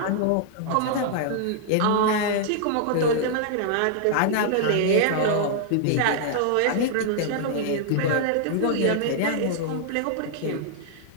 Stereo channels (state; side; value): different; both; correlation -0.01